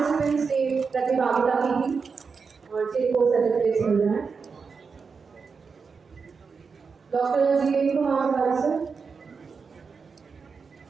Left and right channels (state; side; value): quieter; left; 5.3 dB